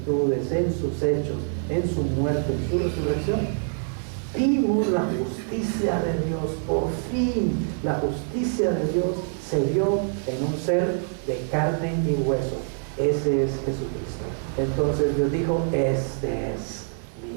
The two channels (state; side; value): silent; left; digital silence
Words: en sus hechos, en su muerte, en su resurrección, vimos la justicia de Dios. Por fin la justicia de Dios se vio en un ser de carne y hueso. Ese es Jesucristo. Entonces Dios dijo: este es